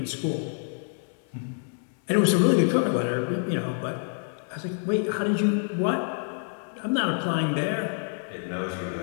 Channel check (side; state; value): right; silent; 59 dB below the other